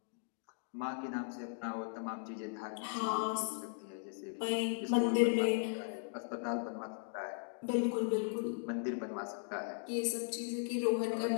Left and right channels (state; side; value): silent; right; digital silence